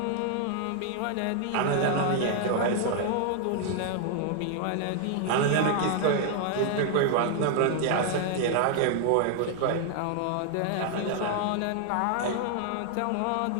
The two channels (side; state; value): both; different; correlation 0.00